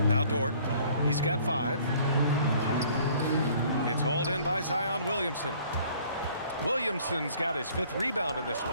Now Dort. He's got 5. It's hauled in by Zion Williamson. Williamson's got his 5th rebound in this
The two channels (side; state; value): both; inverted; correlation -0.56